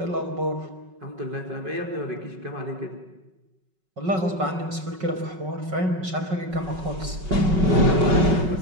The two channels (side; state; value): left; late; 5.4 ms